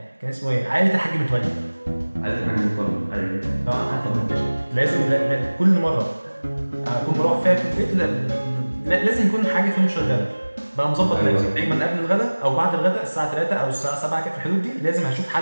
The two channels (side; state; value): both; inverted; correlation -1.00